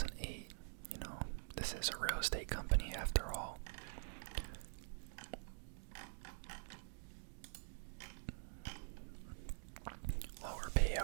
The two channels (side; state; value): left; silent; digital silence